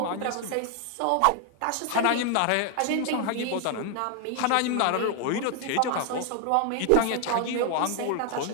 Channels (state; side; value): different; both; correlation 0.00